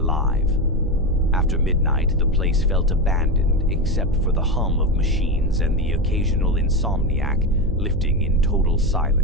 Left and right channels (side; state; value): right; noise; hum, 7 dB below the sound